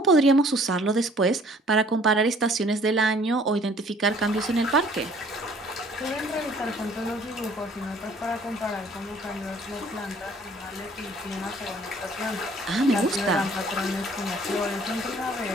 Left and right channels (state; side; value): normal; both; correlation 0.56